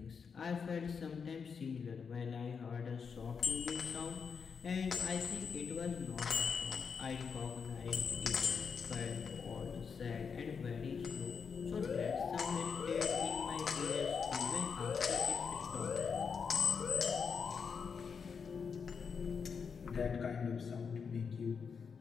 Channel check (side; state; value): right; quieter; 6.0 dB